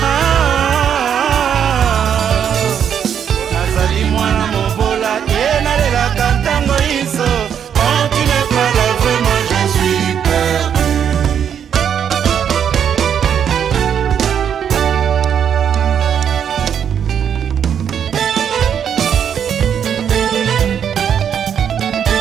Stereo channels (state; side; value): quieter; left; 8.4 dB